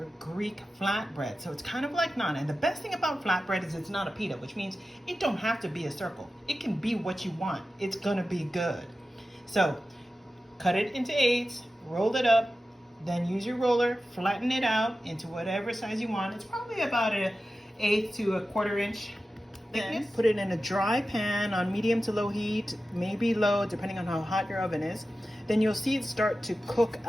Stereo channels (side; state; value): both; normal; correlation 0.94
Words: Greek flatbread. So it's kind of like naan. And the best thing about flatbread is it's not a pita, which means it don't have to be a circle. It can be what you want. It's gonna be good. So cut it into 8s, roll it up, then use your roller, flatten it out into whatever size you want. It's probably about an 1/8 to 1/4 inch thickness. Put it in a dry pan on medium to low heat, maybe low, depending on how hot your oven is. Then you'll see it start to cook